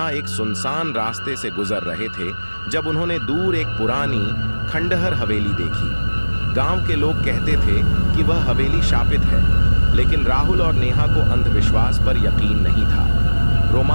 एक सुनसान रास्ते से गुजर रहे थे जब उन्होंने दूर एक पुरानी खंडहर हवेली देखी। गांव के लोग कहते थे कि वह हवेली शापित है, लेकिन राहुल और नेहा को अंधविश्वास पर यकीन नहीं था।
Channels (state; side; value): inverted; both; correlation -1.00